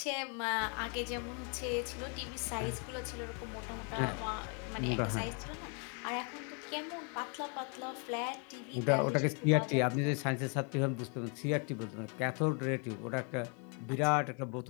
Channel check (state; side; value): quieter; right; 37.4 dB